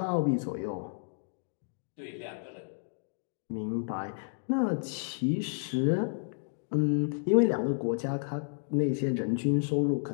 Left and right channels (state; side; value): silent; right; digital silence